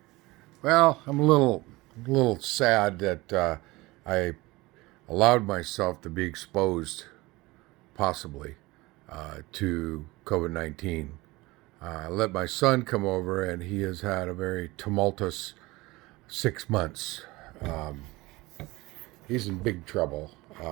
Well, I'm a little sad that I allowed myself to be exposed, possibly, to COVID-19. I let my son come over, and he has had a very tumultuous 6 months. Um, he's in big trouble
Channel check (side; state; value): left; quieter; 21.3 dB